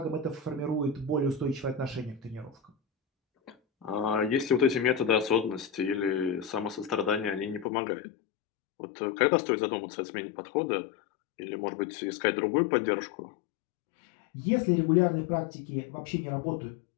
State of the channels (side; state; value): right; drops out; at 7.7 s